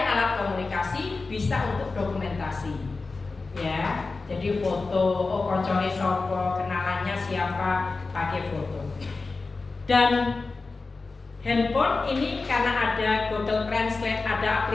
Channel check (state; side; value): quieter; right; 3.9 dB